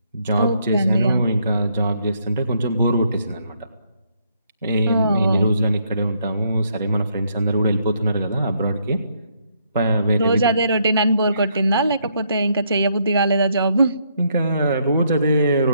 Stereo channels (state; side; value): inverted; both; correlation -0.72